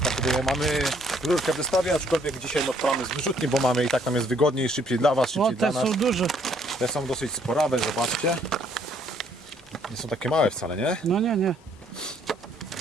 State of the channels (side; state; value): both; normal; correlation 0.65